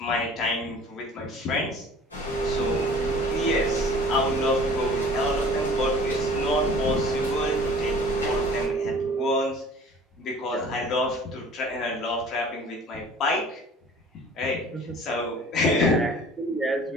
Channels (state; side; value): normal; both; correlation 0.47